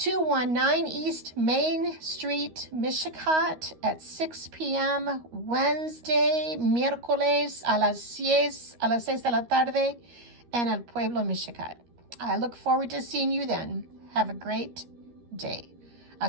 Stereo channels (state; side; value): late; left; 13 ms